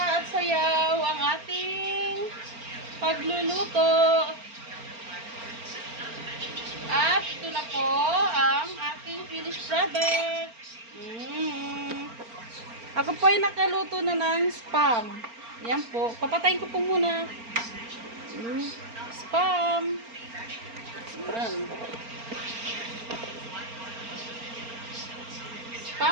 at sayaw ang ating pagluluto. At ito na po ang aking finished product. Ako po ay nakaluto na ng spam. Yan po. Papatayin ko po muna. Spam. Yan.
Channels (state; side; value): late; left; 4.4 ms